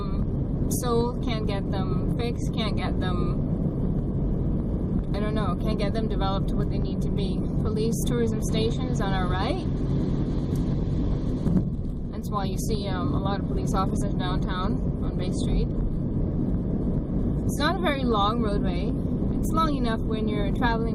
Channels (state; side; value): identical; both; correlation 1.00